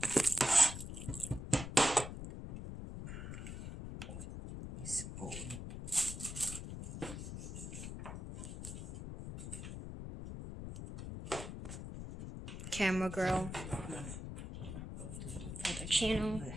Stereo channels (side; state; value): left; noise; rumble, 8 dB below the sound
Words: Spoon. Camera girl. Other channel.